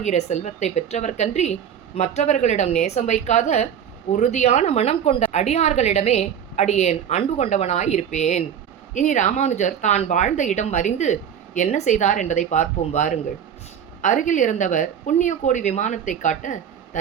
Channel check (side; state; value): left; quieter; 8.6 dB